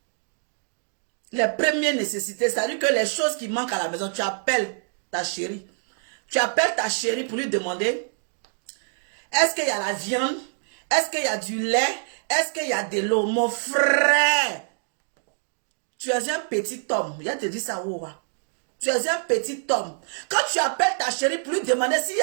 les premières nécessités, c'est-à-dire que les choses qui manquent à la maison, tu appelles ta chérie. Tu appelles ta chérie pour lui demander, est-ce qu'il y a la viande? Est-ce qu'il y a du lait? Est-ce qu'il y a de l'eau? Mon frère, tu es un petit homme. Il a te dit ça, ouah. Tu es un petit homme. Quand tu appelles ta chérie pour lui demander s'il y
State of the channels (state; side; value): silent; left; 61 dB below the other